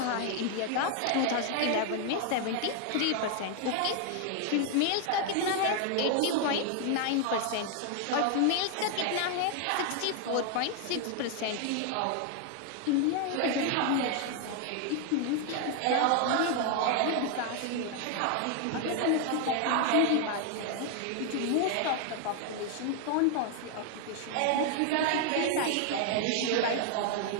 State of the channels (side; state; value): both; different; correlation 0.00